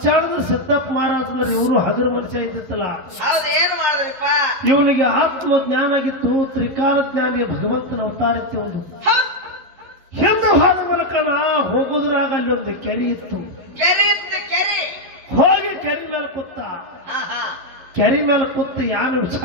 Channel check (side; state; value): left; late; 11 ms